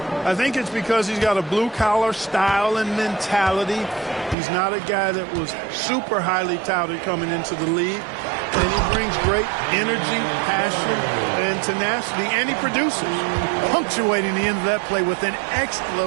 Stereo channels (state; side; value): drops out; left; at 4.4 s